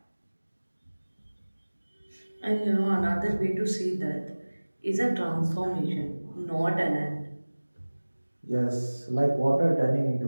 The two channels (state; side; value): inverted; both; correlation -1.00